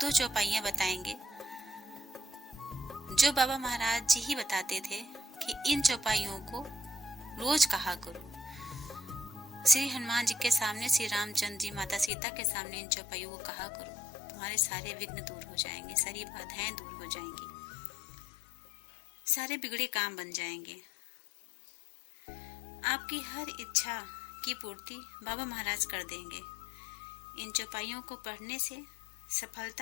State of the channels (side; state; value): right; drops out; at 12.1 s